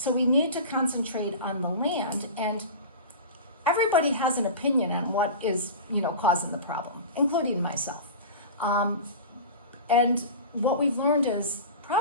we need to concentrate on the land, and everybody has an opinion on what is, causing the problem, including myself. And what we've learned is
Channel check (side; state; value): both; inverted; correlation -0.31